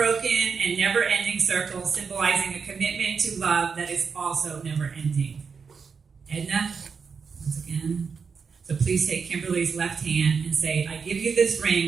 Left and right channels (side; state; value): left; quieter; 5.7 dB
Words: and never-ending circle symbolizing a commitment to love that is also never-ending. Edna, once again. So please take Kimberly's left hand and say, I give you this